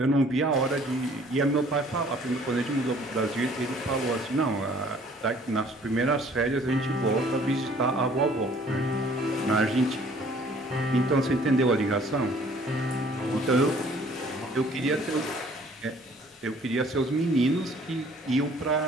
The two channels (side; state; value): both; normal; correlation 0.56